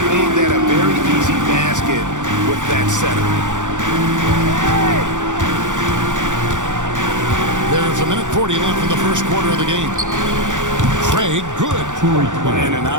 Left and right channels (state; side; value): late; left; 0.86 ms